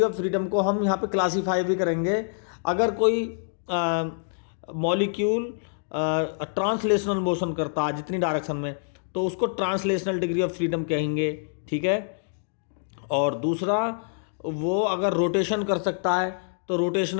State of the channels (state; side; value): silent; right; digital silence